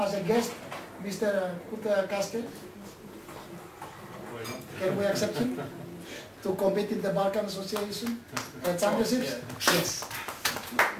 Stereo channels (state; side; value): identical; both; correlation 1.00